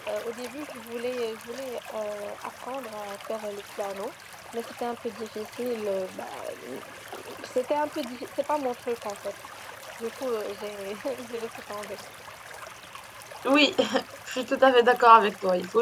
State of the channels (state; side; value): identical; both; correlation 1.00